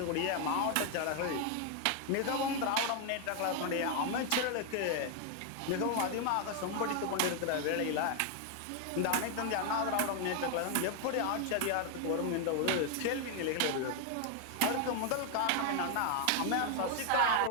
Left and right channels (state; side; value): different; both; correlation 0.00